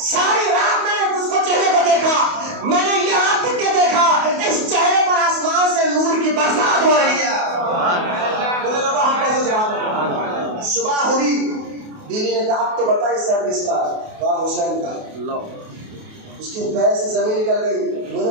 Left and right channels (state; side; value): late; left; 28 ms